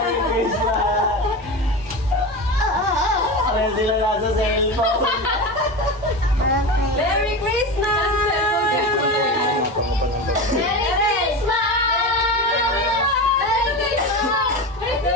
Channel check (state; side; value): normal; both; correlation 0.24